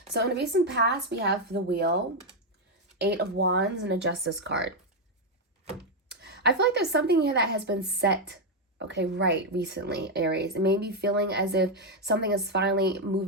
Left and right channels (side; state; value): both; normal; correlation 0.03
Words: So in the recent past, we have the Wheel, Eight of Wands, and a Justice card. I feel like there's something here that has been set right recently, Aries. It may be feeling as if something is finally